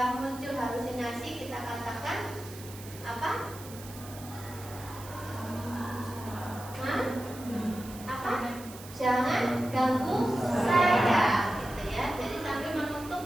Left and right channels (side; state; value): right; noise; hiss, 16 dB below the sound